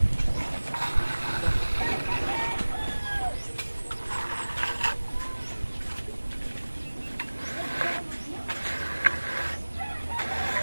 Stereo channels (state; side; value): inverted; both; correlation -1.00